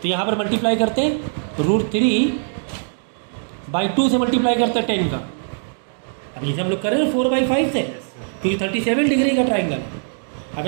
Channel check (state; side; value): silent; left; digital silence